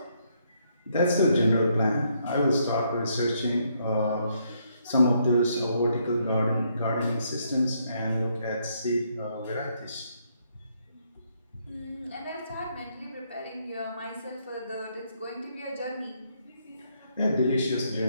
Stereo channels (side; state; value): both; inverted; correlation -0.73